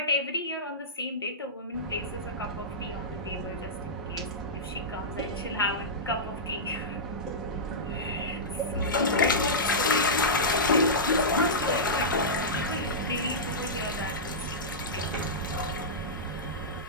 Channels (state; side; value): normal; both; correlation -0.13